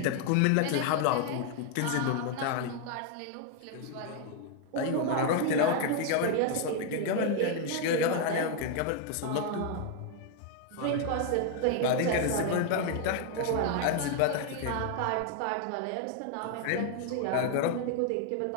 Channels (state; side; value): different; both; correlation 0.00